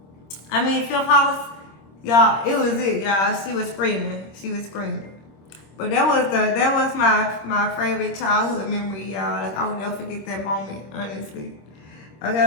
y'all, it was it, y'all. She was screaming. But that was my favorite childhood memory, y'all. Like I will never forget that moment, honestly.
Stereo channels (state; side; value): late; right; 26 ms